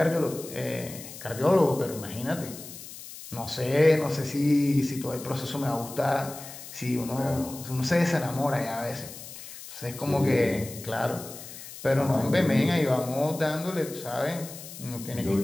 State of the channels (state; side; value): noise; left; hiss, 13 dB below the sound